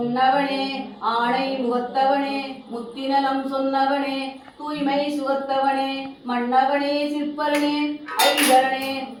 ஆணை முகத்தவனே முத்திநலம் சொன்னவனே தூய்மை சுகத்தவனே மன்னவனே சிற்பரனே ஐகரனே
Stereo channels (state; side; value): identical; both; correlation 1.00